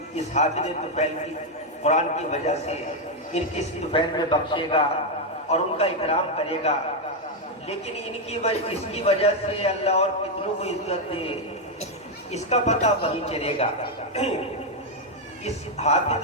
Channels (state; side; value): normal; both; correlation 0.02